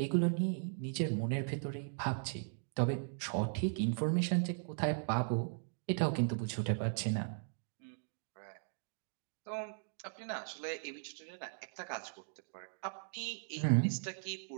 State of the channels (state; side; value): silent; left; digital silence